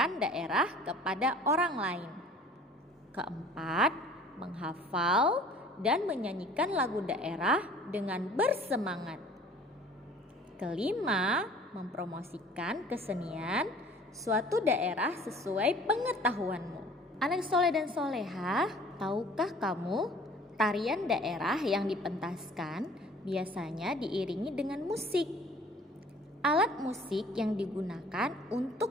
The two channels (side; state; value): both; normal; correlation 0.50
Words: daerah kepada orang lain. Keempat, menghafal dan menyanyikan lagu daerah dengan bersemangat. Kelima, mempromosikan kesenian suatu daerah sesuai pengetahuanmu. Anak soleh dan soleha, tahukah kamu tarian daerah yang dipentaskan biasanya diiringi dengan musik? Alat musik yang digunakan